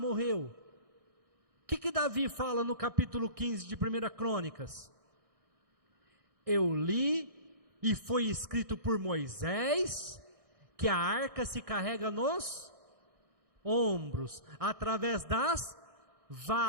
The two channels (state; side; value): late; left; 1.6 ms